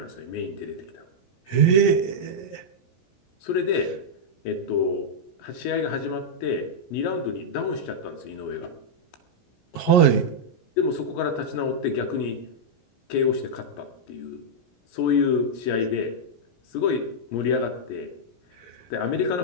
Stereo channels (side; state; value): right; late; 17 ms